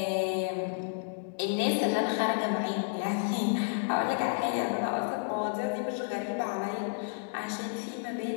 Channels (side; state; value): right; silent; digital silence